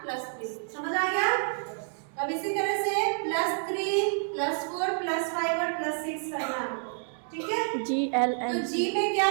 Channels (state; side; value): silent; left; 59 dB below the other